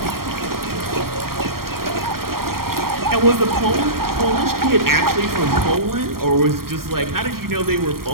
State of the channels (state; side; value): late; left; 0.93 ms